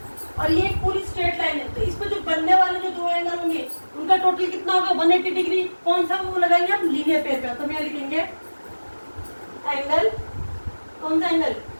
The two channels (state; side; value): inverted; both; correlation -1.00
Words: और ये एक पूरी स्ट्रेट लाइन है, तो इस पर जो बनने वाले जो दो एंगल होंगे उनका टोटल कितना होगा? 180 डिग्री। कौन सा वो लगाएंगे हम? लीनियर पेयर का। तो हम यहाँ लिखेंगे एंगल, कौन सा angle?